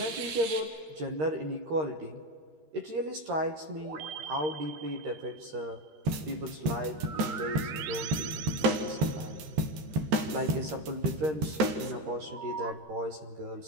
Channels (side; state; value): left; late; 13 ms